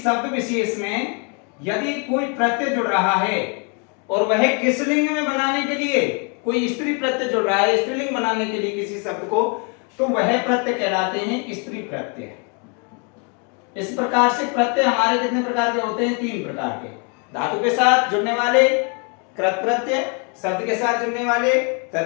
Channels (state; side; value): quieter; right; 36.5 dB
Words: विशेष में यदि कोई प्रत्यय जुड़ रहा है और वह किस लिंग में बनाने के लिए, कोई स्त्री प्रत्यय जुड़ रहा है स्त्रीलिंग बनाने के लिए किसी शब्द को, तो वह प्रत्यय कहलाते हैं स्त्री प्रत्यय। इस प्रकार से प्रत्यय हमारे कितने प्रकार के होते हैं? 3 प्रकार के। धातु के साथ जुड़ने वाले कृत प्रत्यय, शब्द के साथ जुड़ने वाले